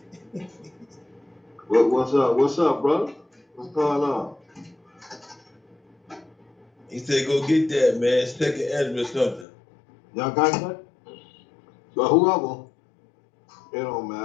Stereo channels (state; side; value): drops out; right; at 9.5 s